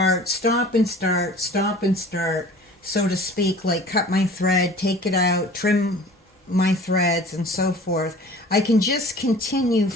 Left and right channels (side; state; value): both; normal; correlation 0.45